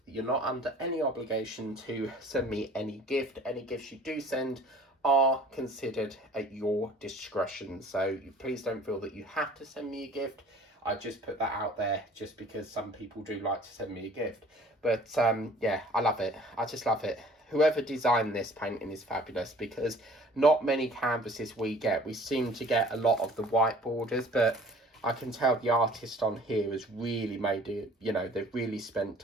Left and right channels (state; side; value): normal; both; correlation 0.50